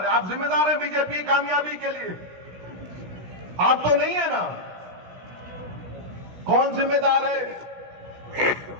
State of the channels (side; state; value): left; late; 16 ms